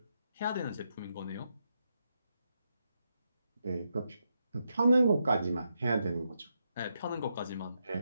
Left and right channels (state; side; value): inverted; both; correlation -0.83